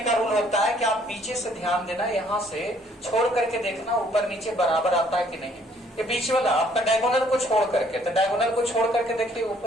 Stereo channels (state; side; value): normal; both; correlation 0.62